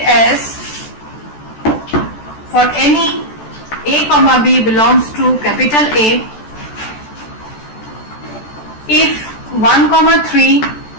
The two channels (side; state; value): right; late; 14 ms